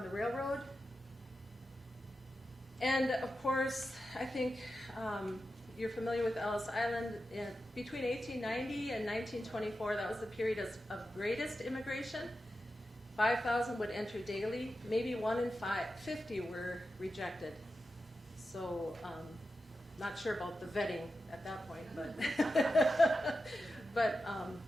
the railroad. And of course, I think you're familiar with Ellis Island. Between 1890 and 1924, that was the period of greatest immigration. 5,000 would enter daily. Maybe 1 in 50 were rejected. So, not sure about the vetting at that point, but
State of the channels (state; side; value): normal; both; correlation 0.90